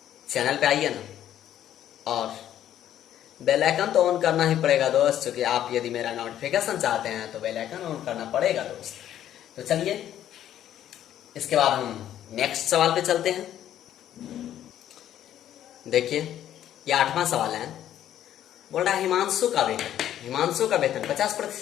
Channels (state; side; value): quieter; right; 11.3 dB